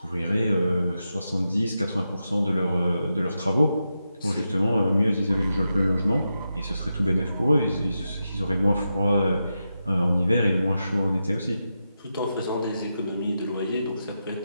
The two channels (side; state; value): both; inverted; correlation -0.88